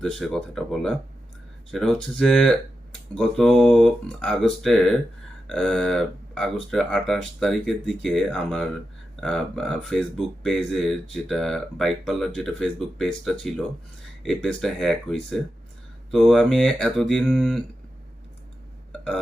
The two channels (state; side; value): normal; both; correlation 0.89